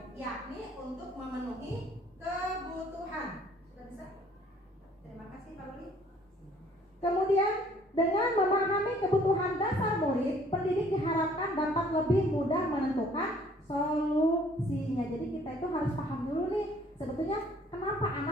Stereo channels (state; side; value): normal; both; correlation 0.59